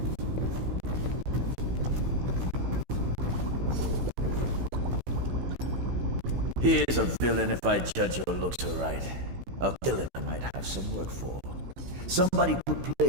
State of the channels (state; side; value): late; left; 16 ms